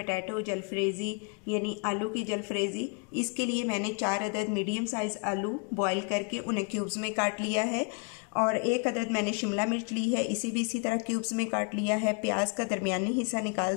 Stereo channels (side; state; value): right; quieter; 37.7 dB